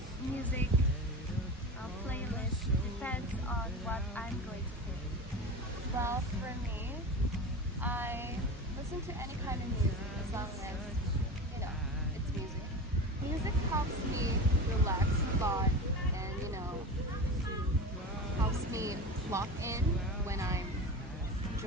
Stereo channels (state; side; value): normal; both; correlation 0.28